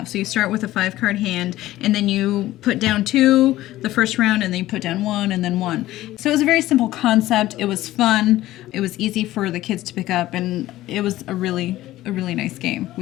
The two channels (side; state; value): right; quieter; 15.6 dB